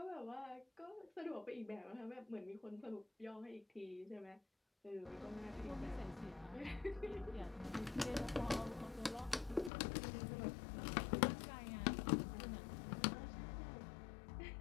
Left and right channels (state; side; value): drops out; right; at 9.7 s